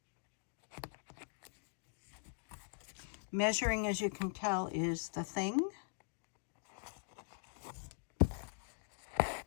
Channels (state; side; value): silent; right; digital silence